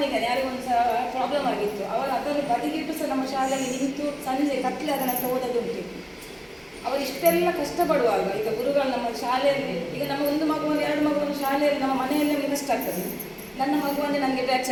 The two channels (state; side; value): identical; both; correlation 1.00